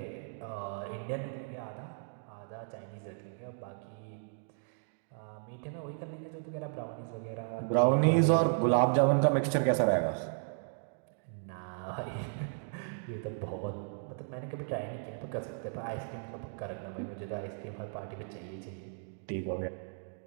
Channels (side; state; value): left; silent; digital silence